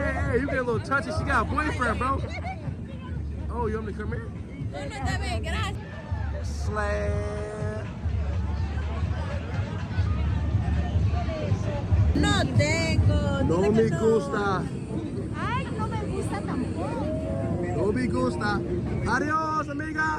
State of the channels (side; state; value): both; identical; correlation 1.00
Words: you get a little touchy. She got a boyfriend, bro. Oh, you want me to come here? Slay. No tengo. No me gusta. Ay, no me gusta tampoco. No me gusta. Adios,